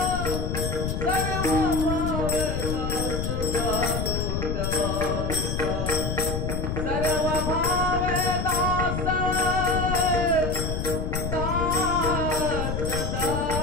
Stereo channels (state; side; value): noise; left; rumble, 1 dB below the sound